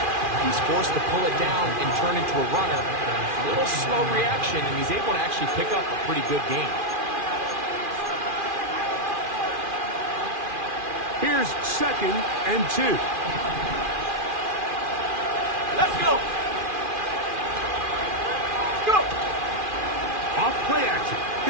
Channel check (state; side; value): late; left; 2.4 ms